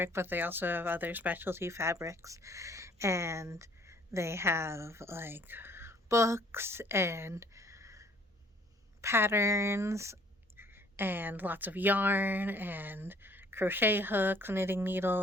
but they also have other specialty fabrics. And they have like books and patterns and lots of yarn and crochet hooks, knitting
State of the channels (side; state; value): both; normal; correlation 0.58